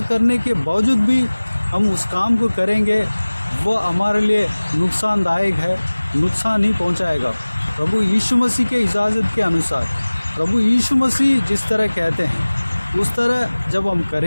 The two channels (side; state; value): both; inverted; correlation -1.00